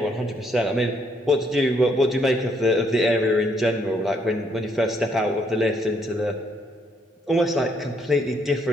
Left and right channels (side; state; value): both; normal; correlation 0.71